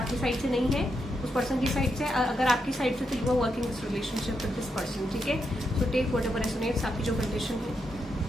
साइड से नहीं है, उस पर्सन की साइड से, अगर आपकी साइड से, तो you are working this relationship with this person. ठीक है, सो टेक व्हाटएवर रेजोनेट्स. आपकी जो कंडीशन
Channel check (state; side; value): normal; both; correlation 0.82